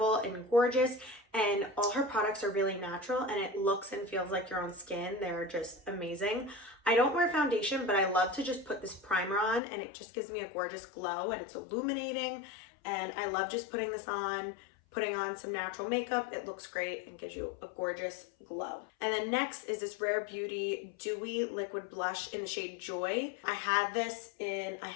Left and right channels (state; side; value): drops out; right; at 9.6 s